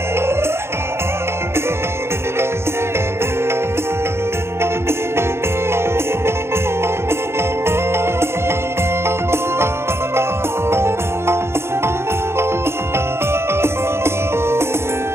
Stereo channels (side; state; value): left; late; 0.12 ms